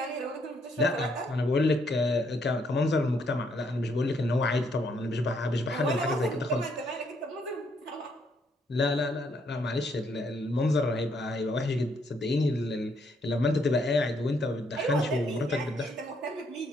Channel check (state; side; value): normal; both; correlation 0.72